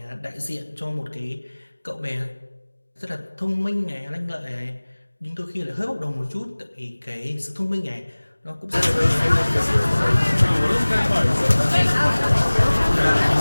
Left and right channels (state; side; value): inverted; both; correlation -1.00